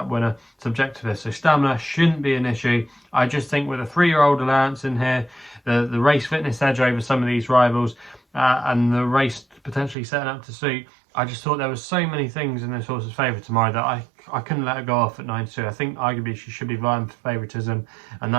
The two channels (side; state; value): left; drops out; at 10.0 s